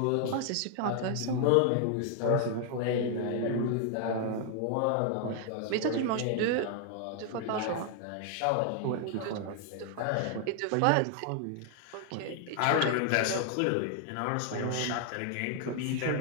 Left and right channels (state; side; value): different; both; correlation 0.00